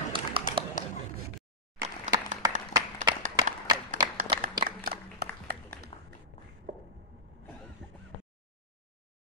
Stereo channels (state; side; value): normal; both; correlation -0.14